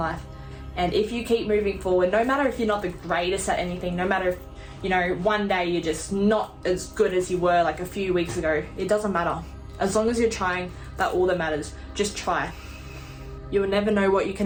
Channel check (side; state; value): both; identical; correlation 1.00